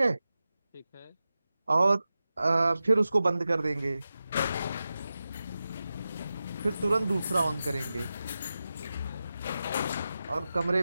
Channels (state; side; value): inverted; both; correlation -0.93